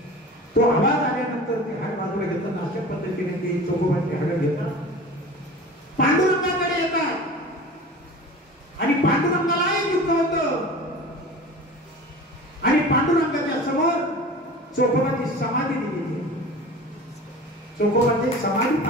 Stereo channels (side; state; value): both; normal; correlation 0.37